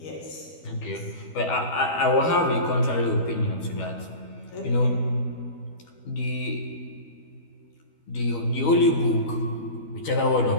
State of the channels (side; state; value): right; late; 12 ms